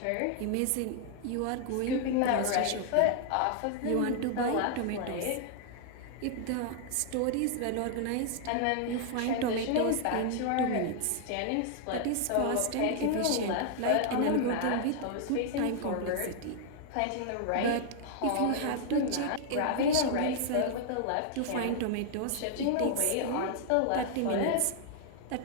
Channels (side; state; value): both; different; correlation 0.00